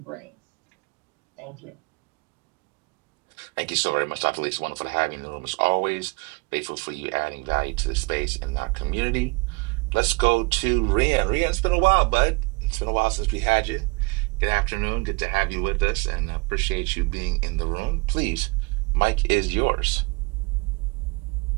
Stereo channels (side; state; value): left; quieter; 28.6 dB